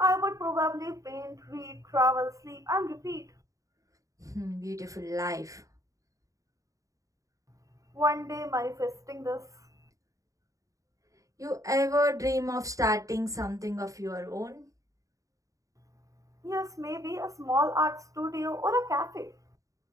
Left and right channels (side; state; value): left; late; 0.16 ms